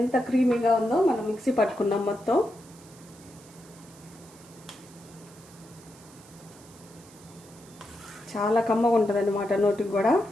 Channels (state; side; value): noise; right; hiss, 23 dB below the sound